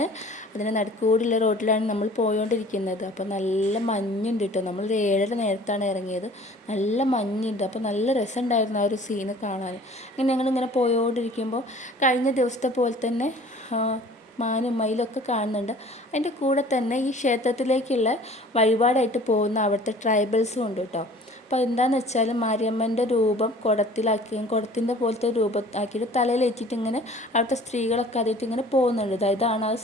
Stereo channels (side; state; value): both; normal; correlation 0.48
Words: അതിന് നടുക്കൂടിയുള്ള റോട്ടിലാണ് നമ്മൾ പോയോണ്ടിരിക്കുന്നത്. അപ്പോൾ നല്ല മഞ്ഞുണ്ട് കേട്ടോ. നമ്മൾ 7:30 നേരത്താണ് ഇറങ്ങിയത്. നല്ല മഞ്ഞുണ്ട്. അപ്പോൾ നല്ല രസമുണ്ടായിരുന്നു ആ ഒരു സീന് കാണാൻ. ഇങ്ങനെ ഞങ്ങളിങ്ങനെ പോയോണ്ടിരിക്കുമ്പോൾ കഴിഞ്ഞ ദിവസത്തെ പോലെ തന്നെ മാനും മയിലൊക്കെ കാണുന്നുണ്ട്. അതിൻ്റെ കൂടെ തന്നെ ഈ ക്ഷേത്രത്തിലേക്കുള്ള വഴിപാടായിട്ട് പോകുന്ന അവിടുത്തെ ട്രൈബൽസും ഉണ്ട് കേട്ടോ. അപ്പോൾ എന്താണെന്ന് വെച്ചാൽ മാരിയമ്മൻ്റെ രൂപം കുടത്തിൻ്റെ പോലത്തെ രൂപം ആക്കിയിട്ട് തലയിൽ വെച്ചിട്ട് ഇങ്ങനെ അവിടുത്തെ സ്ത്രീകളൊക്കെ അതിട്ട് ഇങ്ങനെ പോകുന്നുണ്ട്. ഇതാണ് ആ